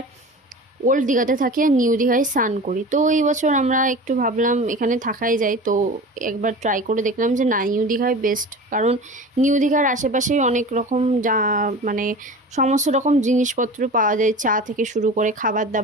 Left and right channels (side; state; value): both; normal; correlation 0.35